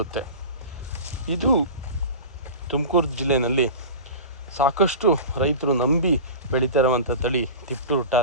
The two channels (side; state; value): both; inverted; correlation -0.33